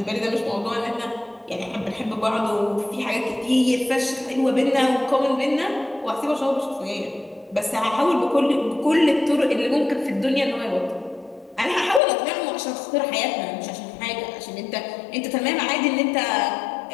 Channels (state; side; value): drops out; right; at 12.0 s